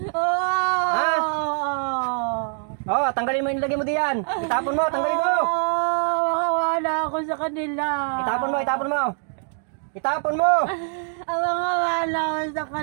Oo! Ha? Oo, tanggalin mo yung nilagay mo diyan. Itapon mo, tanggalin mo. Makawala ako sa kanila. Itapon mo, itapon mo. Itapon mo. Makawala ako sa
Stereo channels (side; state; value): left; silent; 63 dB below the other